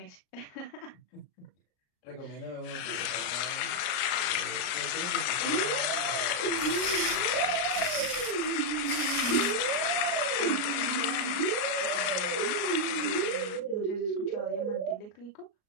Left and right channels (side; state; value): right; late; 34 ms